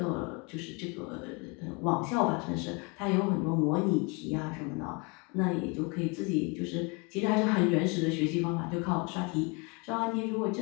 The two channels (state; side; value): quieter; right; 30.9 dB